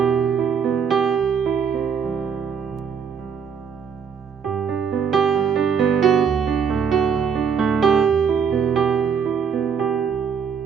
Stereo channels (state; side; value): quieter; left; 6.7 dB